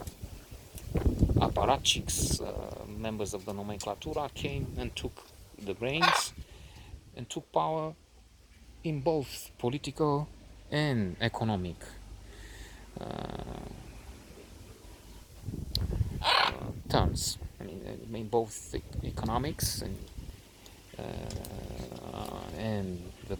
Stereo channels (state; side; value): identical; both; correlation 1.00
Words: apparatchiks, members of the nomenclatura, came and took the reins and took power in both political and economic terms. I mean both economics and the